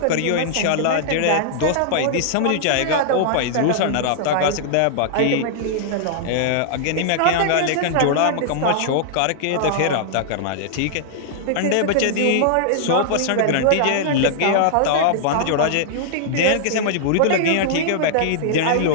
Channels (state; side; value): different; both; correlation -0.01